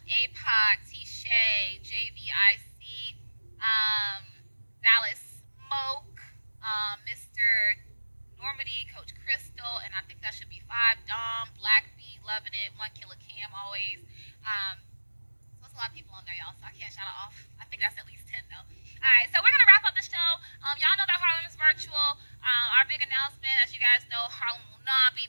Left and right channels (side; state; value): both; inverted; correlation -1.00